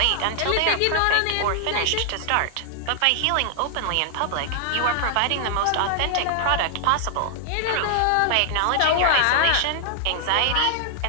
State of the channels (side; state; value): both; different; correlation 0.00